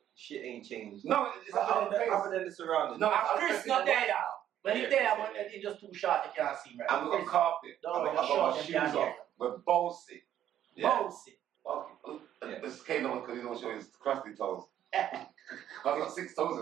shit ain't changed. No, it's other than the surroundings. No, Chris not there now. When he's there, when he's just too short, you can't see him. Right? And we got carpet. No, I got my shoes off. We're bossy. Bossy. This came on because he don't show his crusty toes. I've got 6 toes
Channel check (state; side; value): quieter; left; 11.1 dB